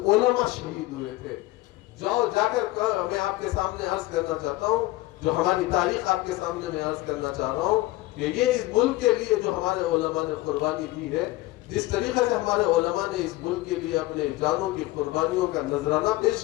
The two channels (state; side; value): quieter; right; 18.4 dB